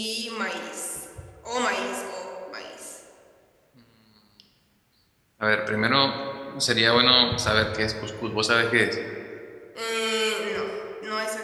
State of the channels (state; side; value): identical; both; correlation 1.00